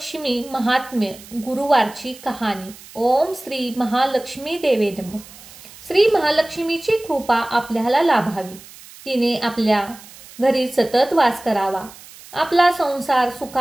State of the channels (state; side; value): noise; right; hiss, 19 dB below the sound